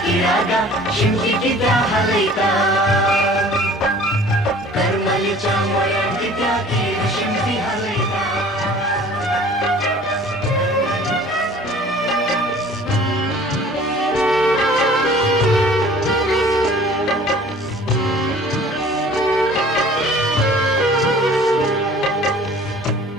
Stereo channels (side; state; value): both; normal; correlation 0.49